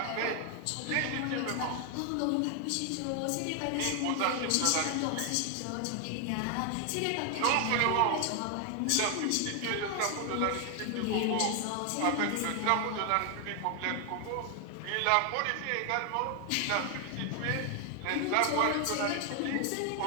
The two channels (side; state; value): both; different; correlation 0.00